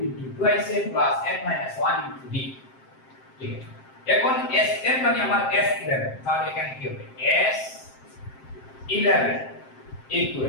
into 2a plus n minus 1 into b, ঠিক আছে। এখন Sn মানে আমার S11, তাহলে এখানে কি হবে S11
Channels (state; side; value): late; right; 7.6 ms